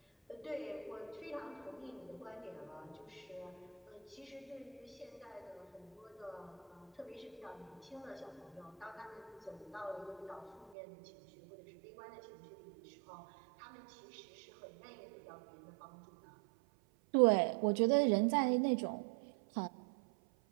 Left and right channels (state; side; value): drops out; left; at 10.8 s